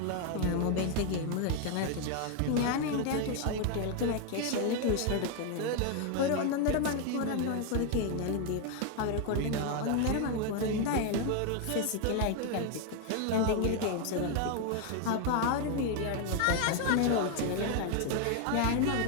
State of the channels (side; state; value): both; different; correlation 0.01